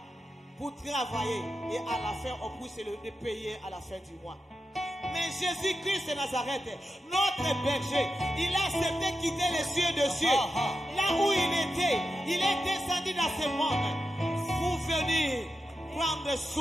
pour travailler et à la fin on puisse le payer à la fin du mois. Mais Jésus-Christ de Nazareth, notre berger, il a accepté quitter les cieux de cieux. Là où il était, il est descendu dans ce monde pour venir prendre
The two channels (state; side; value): normal; both; correlation 0.90